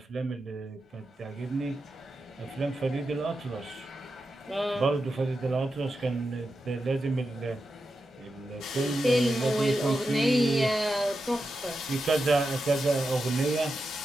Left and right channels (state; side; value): normal; both; correlation 0.89